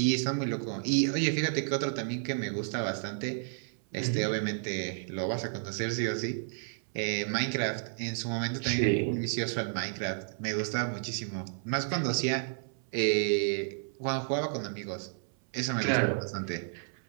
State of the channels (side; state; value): left; silent; 57 dB below the other